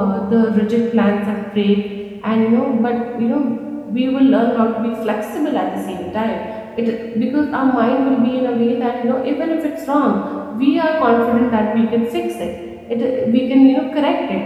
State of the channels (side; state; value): both; identical; correlation 1.00